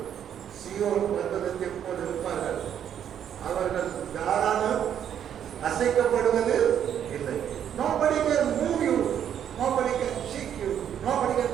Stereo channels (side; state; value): left; quieter; 9.4 dB